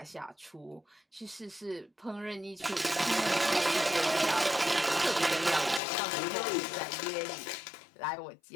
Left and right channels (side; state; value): right; drops out; at 5.8 s